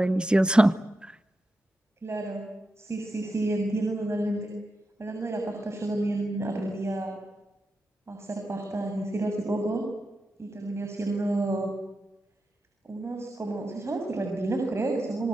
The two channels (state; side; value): normal; both; correlation 0.89